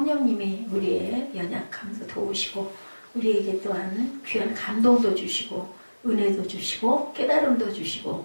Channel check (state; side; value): inverted; both; correlation -1.00